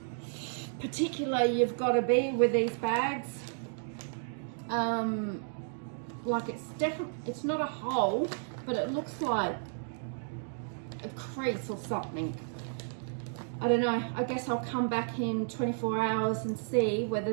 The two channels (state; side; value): silent; left; digital silence